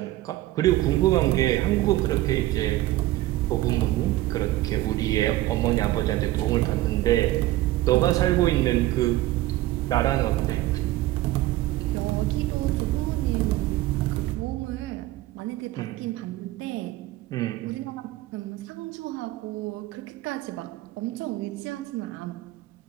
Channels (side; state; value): left; quieter; 16.5 dB